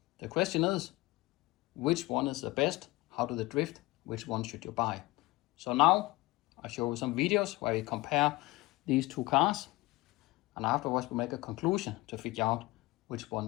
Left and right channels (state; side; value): quieter; right; 20.8 dB